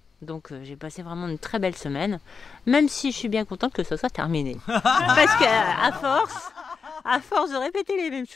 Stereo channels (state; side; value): quieter; right; 5.4 dB